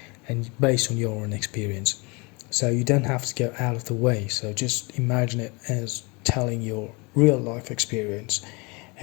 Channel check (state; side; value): quieter; right; 28.7 dB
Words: and based on your own experience. So you don't have to go out of the way. So just imagine it as telling your real life experience